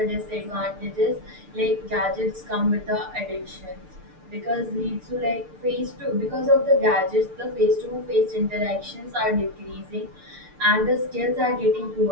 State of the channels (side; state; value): left; late; 6.7 ms